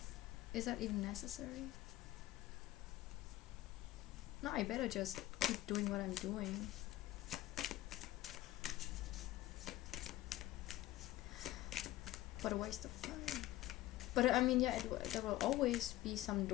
is that even necessary? No, I better just keep doing what I'm doing. What a waste of time. But I mean, yeah, there will always be some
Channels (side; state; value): right; quieter; 15.8 dB